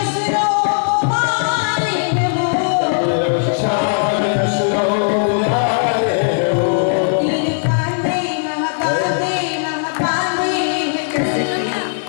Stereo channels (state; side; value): silent; right; digital silence